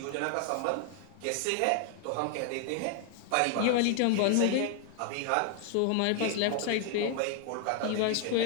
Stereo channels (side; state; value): both; different; correlation 0.00